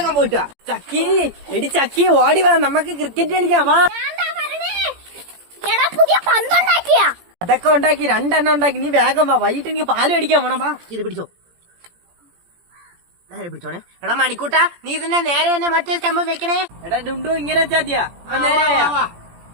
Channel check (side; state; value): left; late; 17 ms